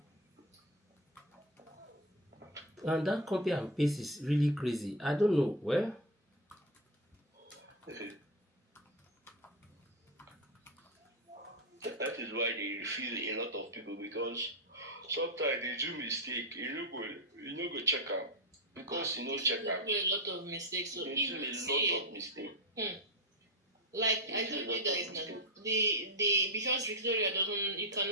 And that copy and paste is really crazy. I don't know. Well, that is why they refuse a lot of people because sometimes they do mistake. You know go check out because check out. They do a lot of mistakes. So They if do you a see lot of mistake. like I told you guys now, the because Victoria you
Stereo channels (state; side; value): normal; both; correlation 0.11